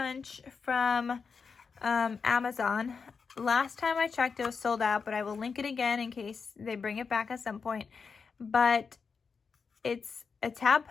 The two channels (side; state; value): right; quieter; 5.4 dB